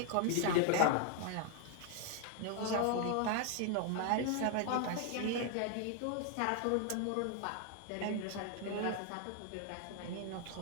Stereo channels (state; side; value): different; both; correlation 0.00